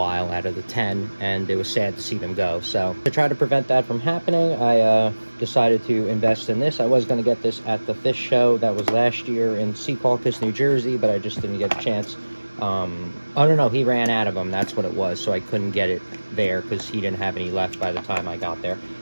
out of the 10, and it was sad to see them go. So to try to prevent that from happening, I decided to invest in this. I was going to get this at the fish show that was last year in Secaucus, New Jersey, but I just didn't get a chance. I don't know, he ran out of them, that's what it was, so I couldn't get it there because he didn't have any left by the time I got there.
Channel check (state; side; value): inverted; both; correlation -1.00